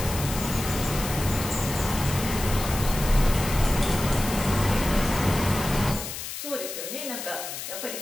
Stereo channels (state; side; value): noise; left; hiss, 7 dB below the sound